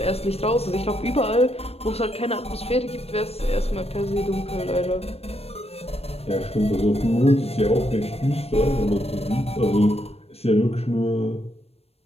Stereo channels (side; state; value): right; late; 0.29 ms